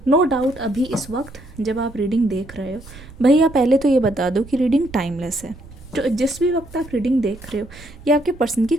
नो डाउट। अभी इस वक्त जब आप रीडिंग देख रहे हो, भैया पहले तो ये बता दो कि रीडिंग टाइमलेस है। तो जिस भी वक्त आप रीडिंग देख रहे हो, ये आपके पर्सन की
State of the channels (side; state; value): right; noise; rumble, 19 dB below the sound